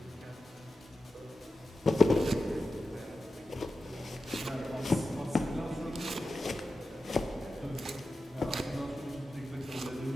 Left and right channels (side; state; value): both; normal; correlation 0.92